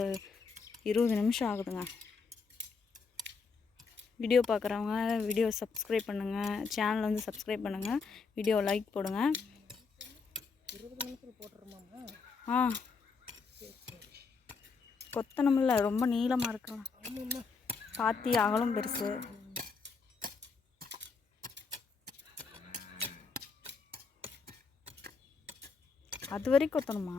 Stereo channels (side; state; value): right; quieter; 4.9 dB